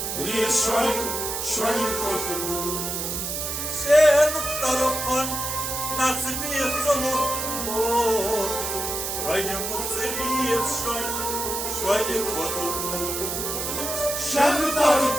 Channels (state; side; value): noise; right; hiss, 3 dB below the sound